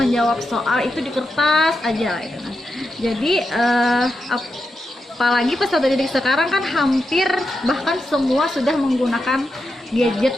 soal itu di kertas aja gitu. Jadi apalagi peserta didik sekarang kan hampir bahkan semua sudah menggunakan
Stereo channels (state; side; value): normal; both; correlation 0.87